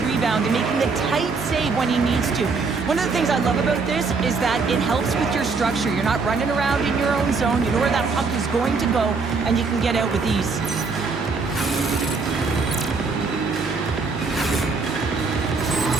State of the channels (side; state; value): left; quieter; 4.5 dB